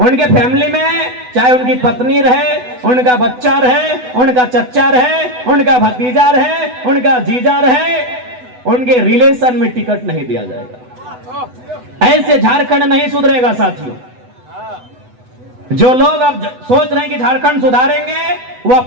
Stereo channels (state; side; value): late; left; 8.0 ms